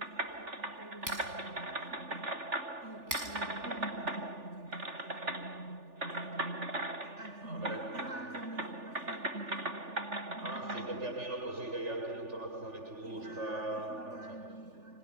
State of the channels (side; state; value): left; late; 3.4 ms